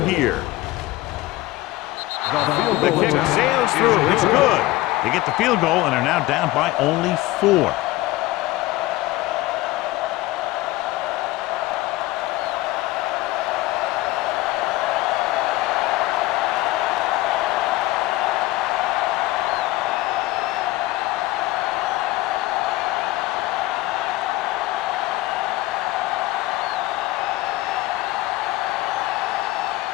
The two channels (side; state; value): right; quieter; 18.2 dB